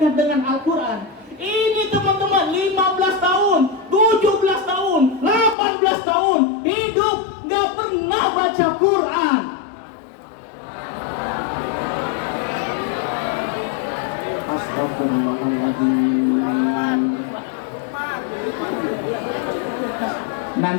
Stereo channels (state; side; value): drops out; right; at 5.6 s